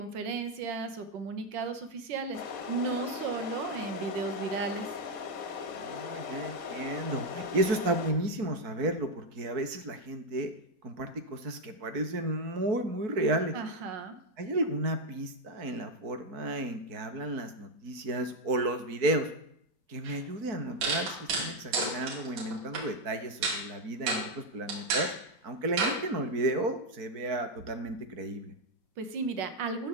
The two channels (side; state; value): left; late; 4.6 ms